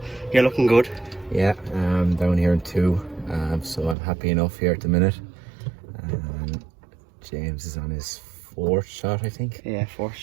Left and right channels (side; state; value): left; drops out; at 4.0 s